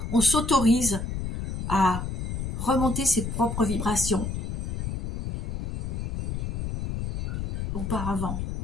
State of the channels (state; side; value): noise; left; rumble, 3 dB below the sound